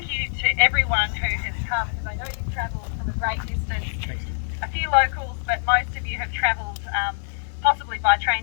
you to everyone who has come, because I know you've travelled from a great distance. A few locals, but most of you have travelled possibly by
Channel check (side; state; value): right; silent; digital silence